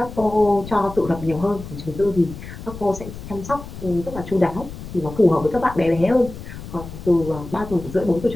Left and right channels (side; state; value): left; noise; rumble, 12 dB below the sound